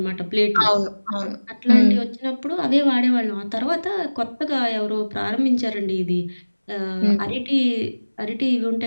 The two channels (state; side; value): inverted; both; correlation -1.00